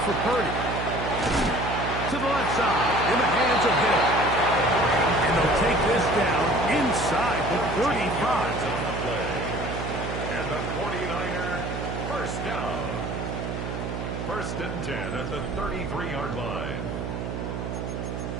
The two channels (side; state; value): right; noise; hum, 4 dB below the sound